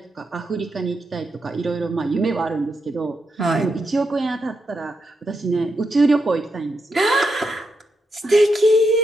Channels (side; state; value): both; normal; correlation 0.83